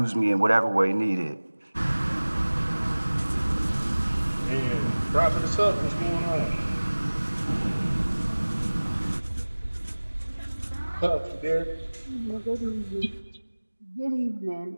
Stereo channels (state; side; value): inverted; both; correlation -1.00